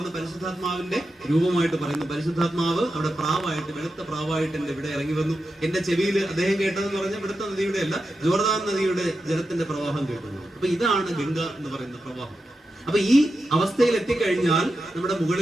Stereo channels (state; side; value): normal; both; correlation 0.89